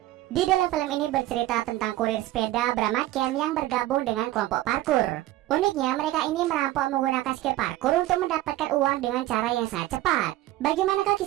Di dalam film ini bercerita tentang kurir sepeda bernama Cam yang bergabung dengan kelompok parkur. Uniknya, mereka ini merampok menggunakan skill parkur untuk mendapatkan uang dengan cara yang sangat cepat. Bagaimanakah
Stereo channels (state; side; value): quieter; left; 15.8 dB